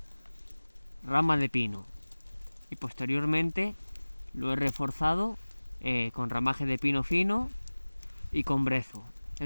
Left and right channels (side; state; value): both; inverted; correlation -1.00